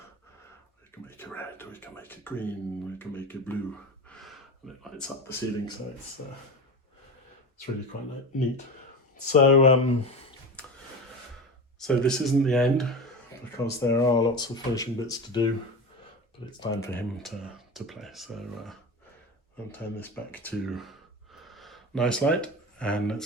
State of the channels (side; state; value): both; normal; correlation 0.26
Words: We can make it red, we can make it green, we can make it blue. And it lights up the ceiling, so it's really quite neat. So, so this isn't the end, because there are lots of finishing bits to do, but it's time for him to play. So I'll turn this back to nice light and let's